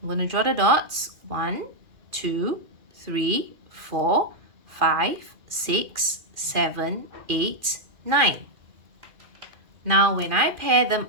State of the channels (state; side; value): late; left; 2.4 ms